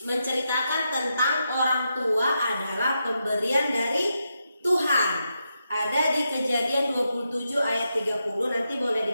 menceritakan tentang orang tua adalah pemberian dari Tuhan. Ada di Kejadian 27 ayat 30, nanti boleh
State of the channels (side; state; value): both; inverted; correlation -0.85